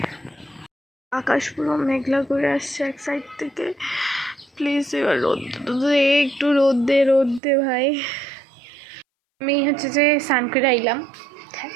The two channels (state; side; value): drops out; left; at 7.4 s